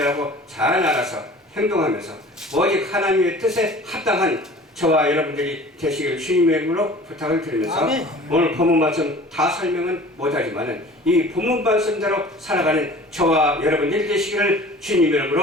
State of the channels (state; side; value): normal; both; correlation 0.44